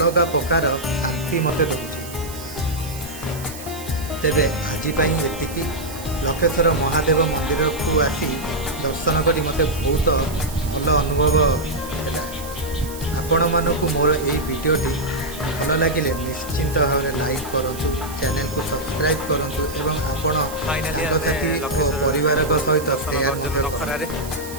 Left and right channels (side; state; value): right; noise; hiss, 14 dB below the sound